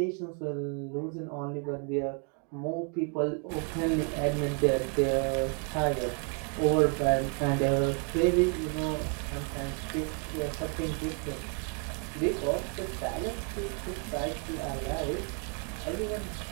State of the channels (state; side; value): quieter; left; 39.4 dB